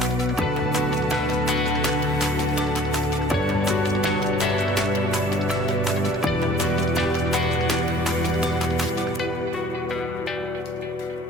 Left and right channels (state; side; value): normal; both; correlation 0.52